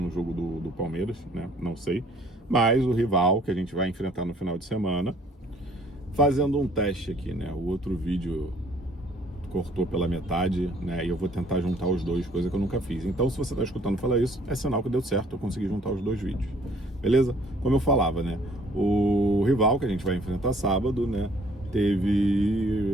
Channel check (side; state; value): both; normal; correlation 0.59